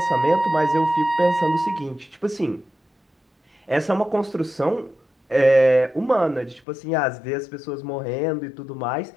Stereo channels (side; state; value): right; drops out; at 6.6 s